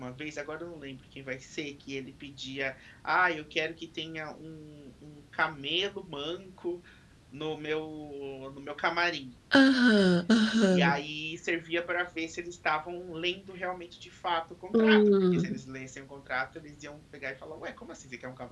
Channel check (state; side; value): identical; both; correlation 1.00